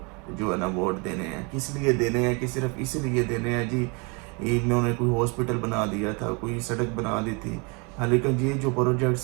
जो है ना वोट देने हैं। किस लिए देने हैं? कि सिर्फ इसीलिए देने हैं जी, इन्होंने कोई हॉस्पिटल बना दिया था, कोई सड़क बना दी थी। हाँ, लेकिन ये जो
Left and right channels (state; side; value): quieter; left; 31.4 dB